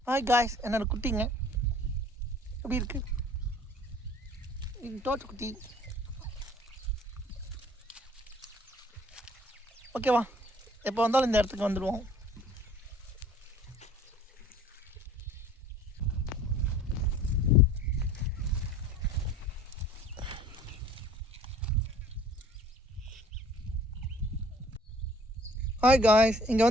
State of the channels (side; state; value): both; normal; correlation 0.52